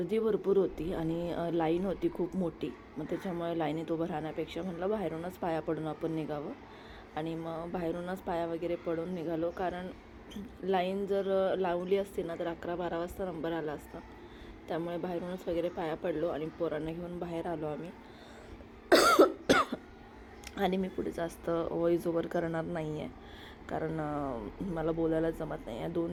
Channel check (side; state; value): both; identical; correlation 1.00